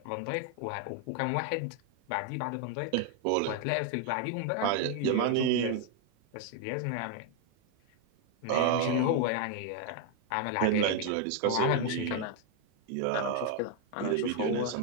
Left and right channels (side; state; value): both; different; correlation 0.01